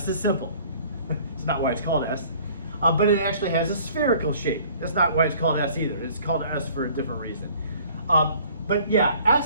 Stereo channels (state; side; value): inverted; both; correlation -0.53